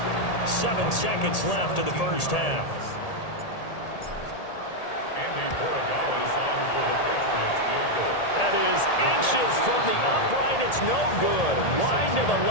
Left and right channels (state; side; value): late; right; 1.8 ms